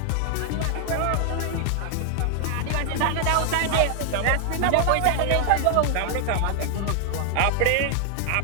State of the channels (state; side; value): different; both; correlation 0.00